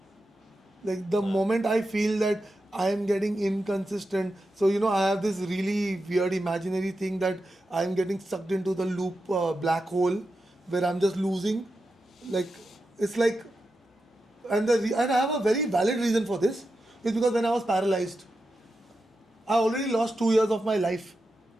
Like the moment I feel that I am getting inconsistent, so I have this really weird imaginary thing that I am getting sucked into the loop black hole where I'm just losing. Like it's like, and I have a very valid reason for this. It's because when I was paralyzed, I already lost 2 years of my life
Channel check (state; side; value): normal; both; correlation 0.89